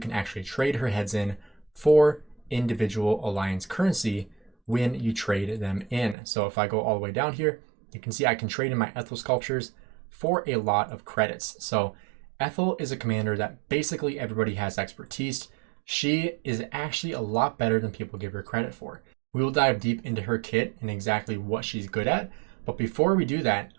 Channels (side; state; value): left; drops out; at 6.2 s